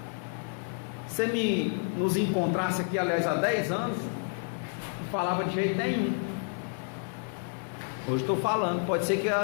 Você nos encontrasse aqui, aliás, há 10 anos, não falava de jeito nenhum. Hoje estou falando, pode ser que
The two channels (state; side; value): silent; right; 58 dB below the other